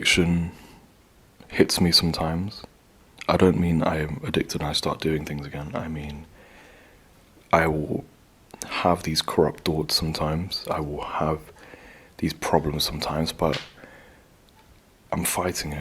hits me sometimes. I don't mean I am addicted and I start doing things again. I mean, I will have these corrupt thoughts sometimes. I will have these problems sometimes, but I'm fighting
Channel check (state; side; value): identical; both; correlation 1.00